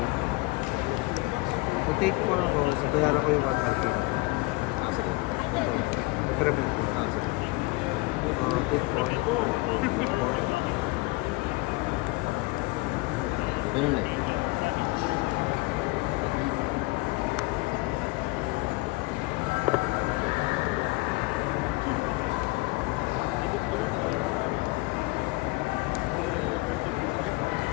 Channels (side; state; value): right; quieter; 23.7 dB